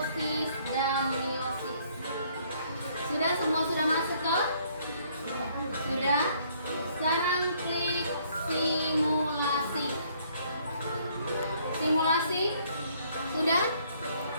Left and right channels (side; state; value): both; inverted; correlation -0.64